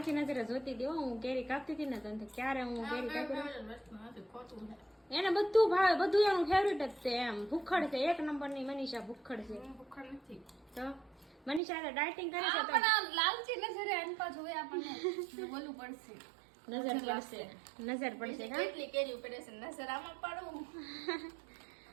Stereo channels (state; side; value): drops out; left; at 11.6 s